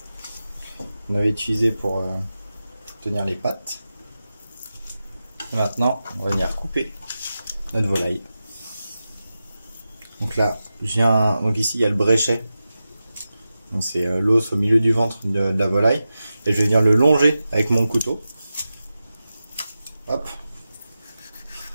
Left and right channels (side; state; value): both; inverted; correlation -0.93